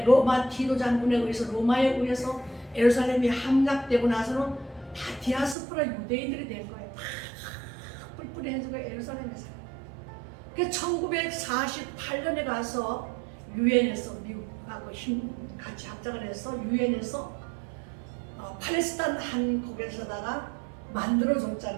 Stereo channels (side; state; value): left; drops out; at 5.6 s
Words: 로마 디도 장군에 의해서 로마에 의해서 예루살렘이 함락되고 나서는 다 디아스포라 유대인들이 된 거예요. 다 뿔뿔이해지고 예루살렘에서. 그래서 1948년에 가서 유엔에서 미국하고 같이 합작을 해서 유엔에서 팔레스타인 한 곳에서다가